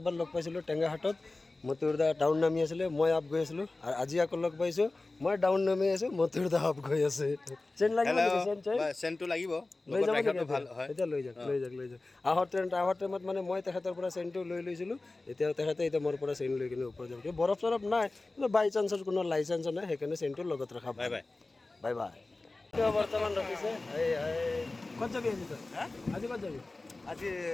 লগ পাইছিলোঁ টেঙাহাটত। মতিউৰদা ডাউন নামি আছিলে, মই আপ গৈ আছিলোঁ। আৰু আজি আকৌ লগ পাইছোঁ, মই ডাউন নামি আছোঁ, মতিউৰদা আপ গৈ আছে। চেইন লাগিব নেকি? চেইনটো লাগিব, লৈ যাব নেকি? এতিয়া লৈ যাওক। আহোঁ টাইমত মানে মই তেখেতৰ পৰা চেইনটো লৈ লৈছিলোঁ। এতিয়া তেখেতে মোৰ পৰা চেইন লৈ কিনে ওপৰত যাব। বৰফ চৰফ নাই, কিন্তু বাই চান্সৰ কোনো লাইচেঞ্চ নাই, সেইকাৰণে চেইনটো লগত ৰখা। Bye bye. বৰ্তমান ৰাখিছে। ক'ত যাবি আজি তই? আজি ক'ত যাবি? আজি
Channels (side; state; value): right; quieter; 3.2 dB